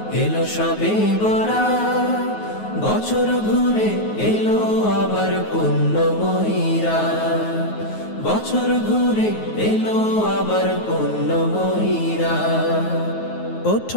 এলো সবে বরা, বছর ঘুরে এলো আবার পুণ্যময়ীরা। বছর ঘুরে এলো আবার পুণ্যময়ীরা।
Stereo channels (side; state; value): right; late; 9.4 ms